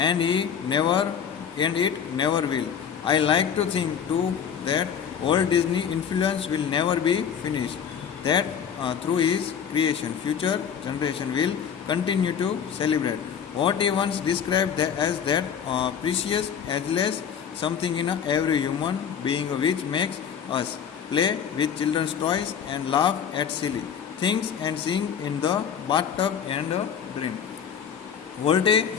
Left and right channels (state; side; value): quieter; right; 7.8 dB